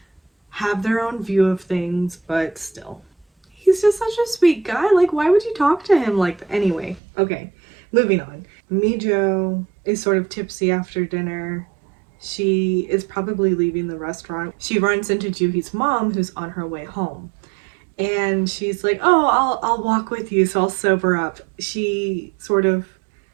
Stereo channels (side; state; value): left; drops out; at 7.0 s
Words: have their own view of things, but still. He's just such a sweet guy. Like, why would you talk to him like that? Anyway, okay, moving on. Mijo is sort of tipsy after dinner. She is probably leaving the restaurant. She runs into Juhi's mom, who's on her way home. And she's like, oh, I'll walk with you, so I'll sober up. She sort of